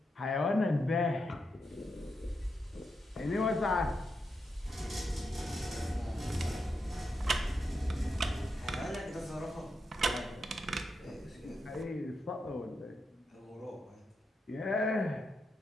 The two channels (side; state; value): both; normal; correlation 0.85